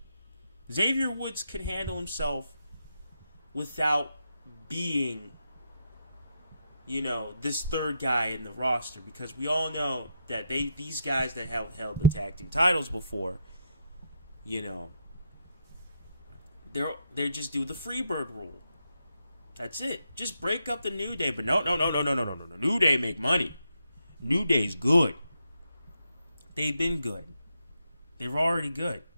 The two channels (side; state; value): both; inverted; correlation -0.80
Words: Xavier Woods can handle himself without being, this third guy in the roster. Because we all know that these guys that have held the tag team titles before, they just do the Freebird rule. That's it. Just break up the New Day. But no. New Day make money. New Day's good. They've been good. They were already good.